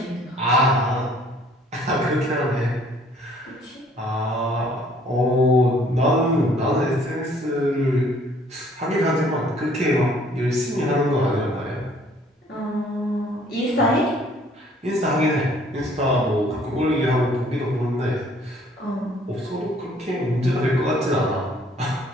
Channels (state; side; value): normal; both; correlation 0.59